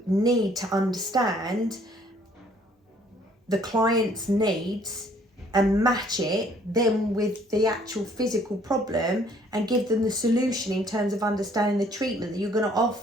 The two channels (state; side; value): normal; both; correlation 0.61